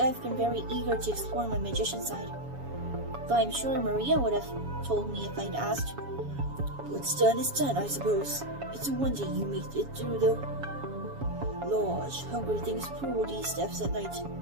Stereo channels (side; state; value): left; late; 7.2 ms